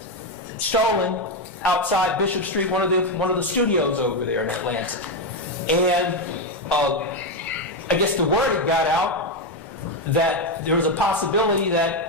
stolen outside Bishop Street, one of the studios over there in Atlanta. And I guess the word had got out that there was a possibility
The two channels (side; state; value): both; normal; correlation 0.07